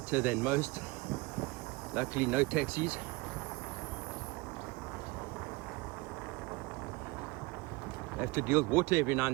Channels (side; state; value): left; quieter; 24.5 dB